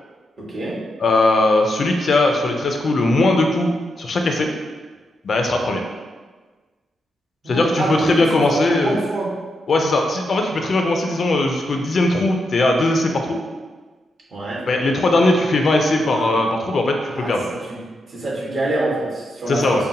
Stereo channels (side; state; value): both; normal; correlation 0.84